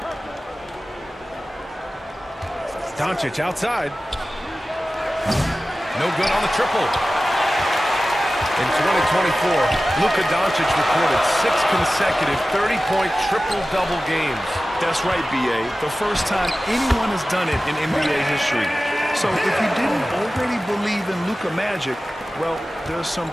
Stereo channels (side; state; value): both; normal; correlation 0.96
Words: Doncic outside. No good on the triple. In 2024, Luka Doncic recorded 6 consecutive 30-point triple-double games. That's right, B.A. The first time anyone has done it in NBA history. So if you didn't already believe in Luka Magic, well, there's some